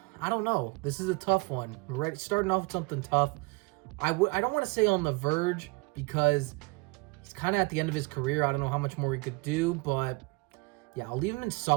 I don't know. This is a tough one. We're starting off with something tough. I don't want to say on the verge because he's kind of at the end of his career. I don't know how much more he could do, but yeah, I'll leave him in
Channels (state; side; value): quieter; left; 27.0 dB